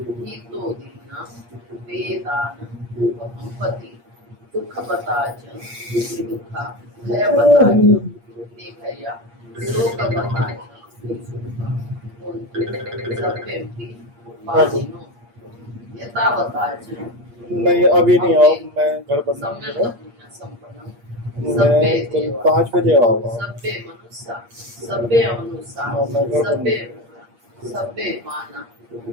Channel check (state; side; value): late; left; 8.5 ms